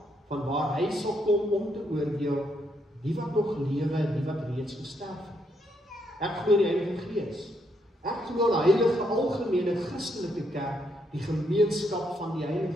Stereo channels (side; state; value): both; normal; correlation 0.76